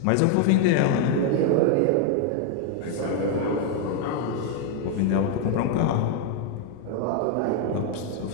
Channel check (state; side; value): different; both; correlation 0.01